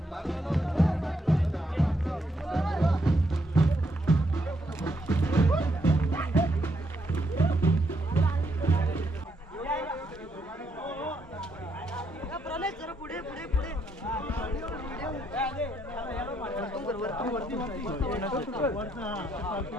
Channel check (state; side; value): normal; both; correlation 0.76